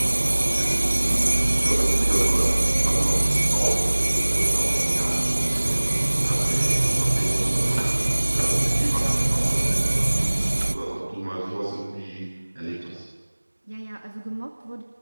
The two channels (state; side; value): inverted; both; correlation -1.00